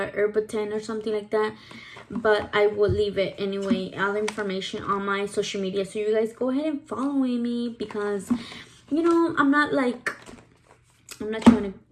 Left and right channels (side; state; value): both; identical; correlation 1.00